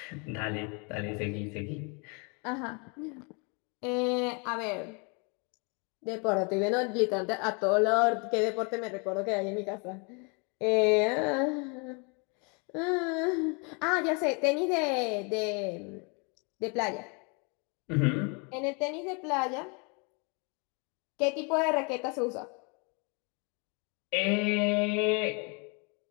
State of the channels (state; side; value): quieter; right; 33.7 dB